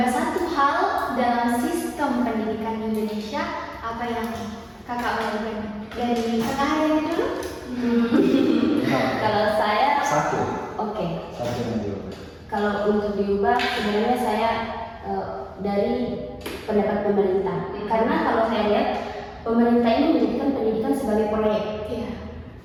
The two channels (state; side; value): identical; both; correlation 1.00